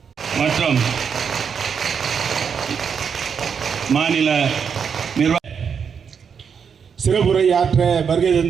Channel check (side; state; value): left; quieter; 6.7 dB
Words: மற்றும் மாநில நிர்வாக சிறப்புரை ஆற்ற வருகை